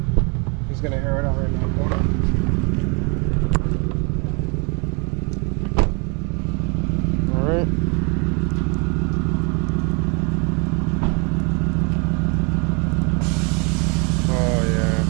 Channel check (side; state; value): left; quieter; 33.0 dB